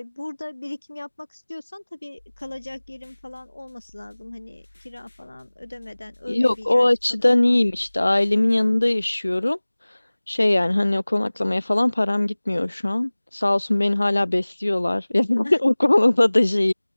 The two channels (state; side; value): inverted; both; correlation -1.00